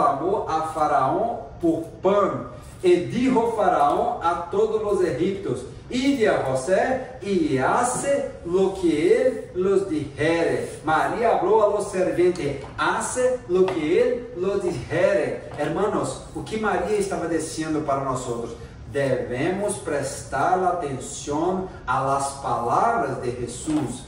a Faraó por pão. E dijo Faraó a todos os egipcios: ide a José y hace lo que él los dijere. María habló a los serventes: hace lo que él los dijere. Hermanos, o que Maria estava dizendo para nós outros? Devemos prestar atenção às palavras de Jesus.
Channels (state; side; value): identical; both; correlation 1.00